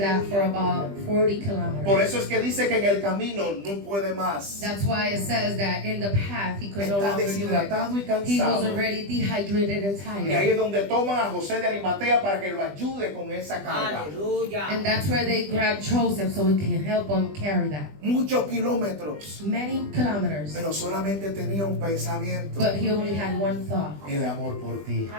for about 40 Por kilometers. eso es que dice que en el camino no puede más. That's why it says that in the path he could no Está longer do it. deshidratado y He was cansado. already dehydrated and Y ahí tired. es donde toman a José de Arimatea para que lo ayude con esa carga. Aleluya. And that's where they grabbed Joseph so he can help him carry that. Muchos kilómetros. Many kilometers. Pero solamente tenía un pensamiento. But he only had one thought. El amor por ti.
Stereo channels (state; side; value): late; left; 20 ms